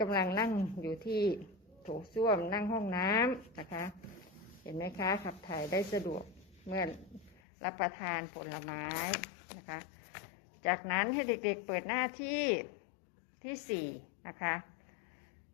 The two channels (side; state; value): right; drops out; at 7.4 s